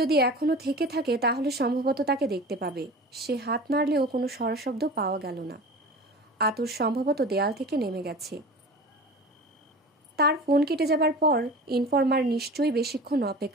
যদি এখনো থেকে থাকে তাহলে সম্ভবত তাকে দেখতে পাবে। সে হাত নাড়লেও কোনো স্বরশব্দ পাওয়া গেল না। আতর সম্ভবত দেয়াল থেকে নেমে গেছে। তার ফোন কেটে যাবার পর ইনফরমার নিশ্চয়ই বেশিক্ষণ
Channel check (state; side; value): normal; both; correlation 0.36